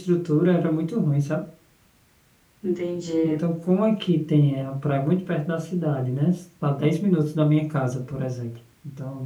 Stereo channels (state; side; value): identical; both; correlation 1.00